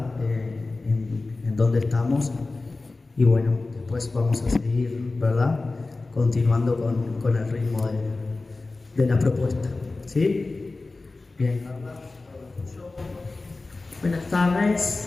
en dónde estamos. Y bueno, después vamos a seguir, ¿verdad?, continuando con el ritmo de la propuesta. ¿Sí? Bien, Carla. Buenas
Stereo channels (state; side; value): quieter; right; 3.4 dB